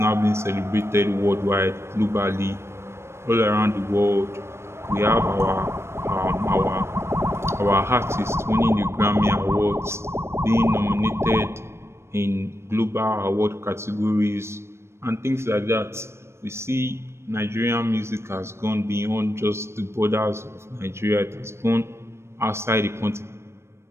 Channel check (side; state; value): left; late; 0.13 ms